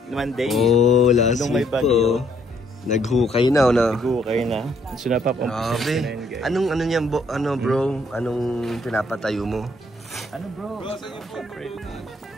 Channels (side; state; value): both; normal; correlation 0.68